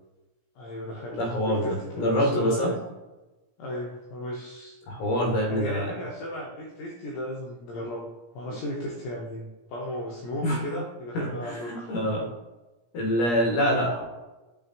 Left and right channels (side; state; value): right; late; 17 ms